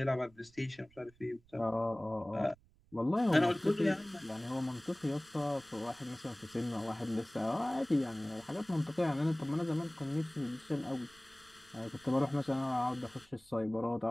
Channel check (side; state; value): right; noise; rumble, 29 dB below the sound